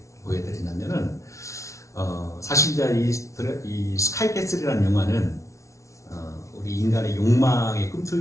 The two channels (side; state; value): right; late; 0.14 ms